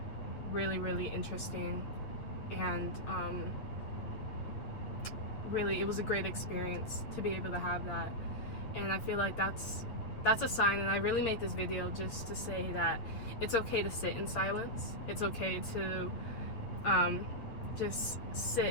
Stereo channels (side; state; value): right; late; 8.6 ms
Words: really, really interesting. And really, it was a great experience to be able to have that. And I feel like that's a sign. And I really made this video just to say that it's okay to sit in silence. It's okay to just